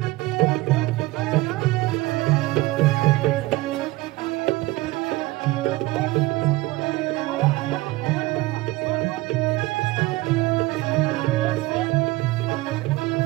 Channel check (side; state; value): left; quieter; 19.4 dB